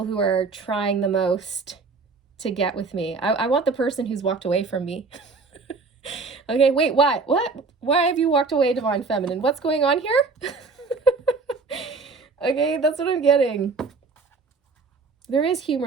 who are trying the most to get with me. I want the person who's walked away from me. Okay, wait, what? Why have you walked away, Divine Feminine? What's going on here? Okay, that's what I'm getting. There is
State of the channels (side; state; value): left; quieter; 4.3 dB